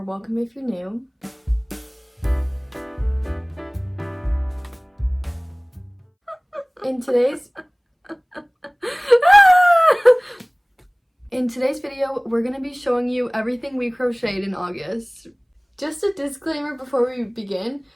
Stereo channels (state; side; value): identical; both; correlation 1.00